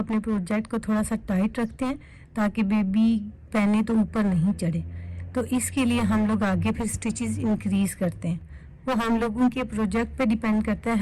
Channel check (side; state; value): both; identical; correlation 1.00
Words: प्रोजेक्ट को थोड़ा सा टाइट रखते हैं ताकि बेबी पहने तो ऊपर नहीं चढ़े। तो इसके लिए हम लोग आगे फिर स्टिचेस इंक्रीज करते हैं। वो हम लोगों के प्रोजेक्ट पे डिपेंड करता है